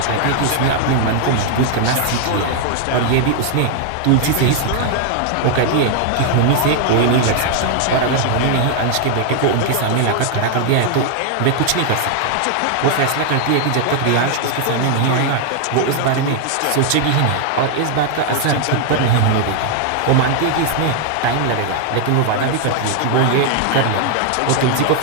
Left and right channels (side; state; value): both; different; correlation 0.00